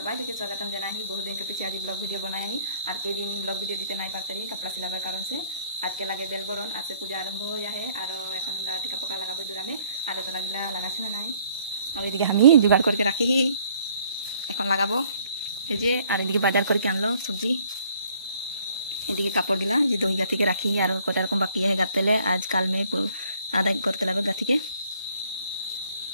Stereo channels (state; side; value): inverted; both; correlation -0.62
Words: के स्वागतम जना ही बहुत दिन के पीछे आज ब्लॉग वीडियो बनाया ही और कई दिन ब्लॉग वीडियो दीते नहीं पाते ही कपड़ा सिलाबार कारण से आज के लगे बेल बरन आज से पूजा आरम्भ हो जाए और এখন আমরা টিকা পোকা লাগাবো জোড়ালে আর তো লাগিলা লাগাছে না নাই আর এদিকে আমি জোগাড় করকে রাখি এখন লাগাবো এই যে আর এদিকে বাজার করকে আনলো সবজি এদিকে কাপড় গিলা যে দই গাথিকে রাখি আর কত রকম বাকি है গাতেলে आज কাল में आधा करते लगे गाथी के